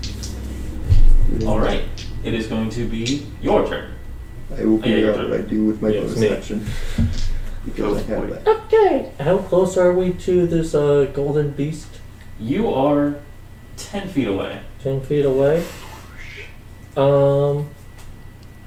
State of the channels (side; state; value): both; identical; correlation 1.00